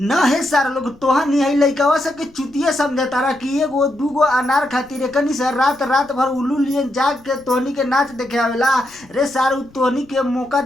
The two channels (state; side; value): noise; left; rumble, 28 dB below the sound